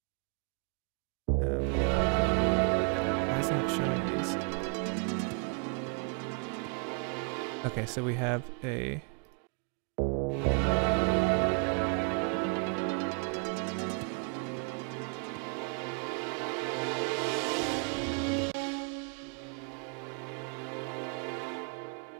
Why isn't it showing these? Okay, so we have a...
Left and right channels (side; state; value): left; quieter; 39.2 dB